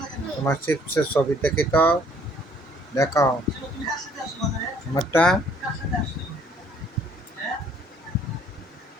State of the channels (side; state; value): both; normal; correlation 0.61